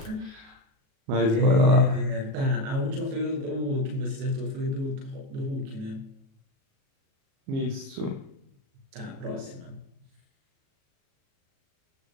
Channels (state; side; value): late; left; 37 ms